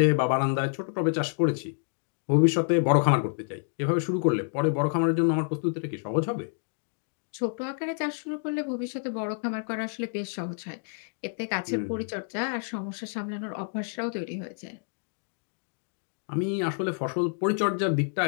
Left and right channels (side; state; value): right; silent; digital silence